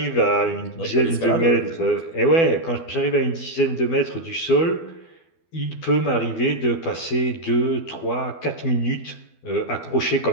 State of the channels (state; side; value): late; right; 12 ms